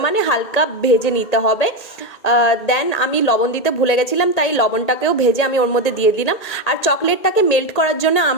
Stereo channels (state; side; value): late; right; 1.8 ms